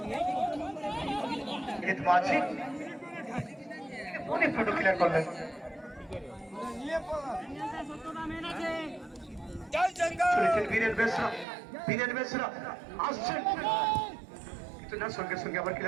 অনেক ফটো ক্লিয়ার করলেন। বীরেন বেসরা আসছেন কিন্তু না, সঙ্গে সঙ্গে আবার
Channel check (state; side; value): drops out; left; at 11.5 s